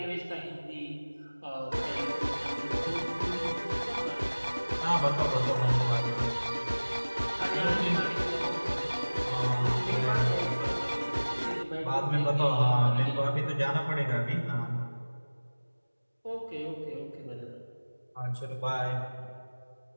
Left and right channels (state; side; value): inverted; both; correlation -1.00